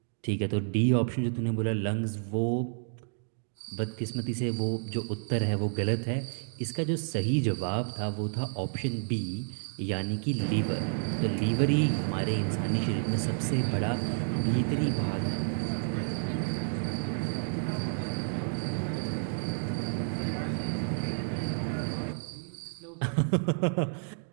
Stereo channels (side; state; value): left; silent; digital silence